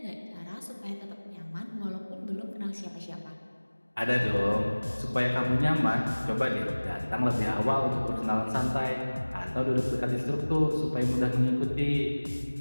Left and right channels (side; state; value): both; inverted; correlation -1.00